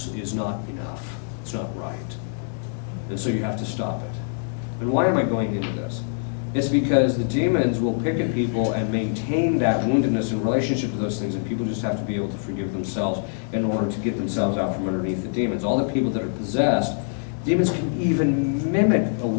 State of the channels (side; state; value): right; silent; digital silence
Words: enough. It's not right. And so you have to stop it. And why am I going into this? It's because the demons will pick at people and maintain that woundedness in relationship to those things, and people just have to be able to forgive themselves in order to get themselves out from underneath the demons. All the people that are possessed, demons can even mimic a